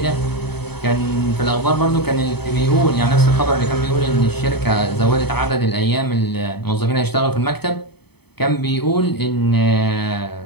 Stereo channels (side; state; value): right; late; 0.97 ms